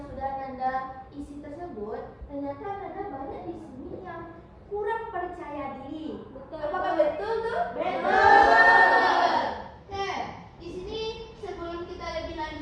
sudah Nanda isi tersebut, ternyata Nanda banyak di sini yang kurang percaya diri. Betul. Apakah betul tuh? Betul. Nah, di sini sebelum kita lebih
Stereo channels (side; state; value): both; identical; correlation 1.00